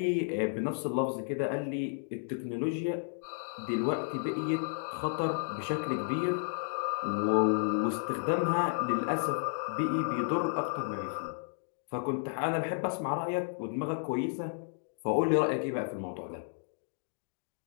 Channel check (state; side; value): silent; right; digital silence